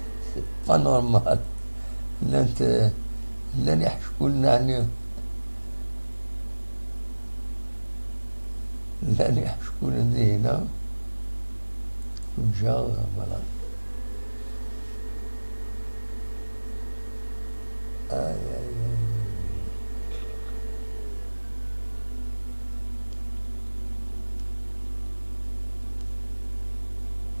با نورمال. لن يحشكوا لنا يعني لن يحشكوا لنا هنا وجا فوالا.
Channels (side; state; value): both; inverted; correlation -1.00